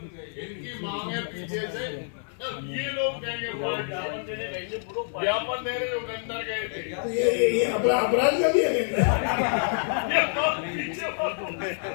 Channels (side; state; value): right; silent; 60 dB below the other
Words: इनकी मांग है पीछे से, ये लोग देंगे ज्ञापन देने जो अंदर गए थे। तो ये अपराध का भी है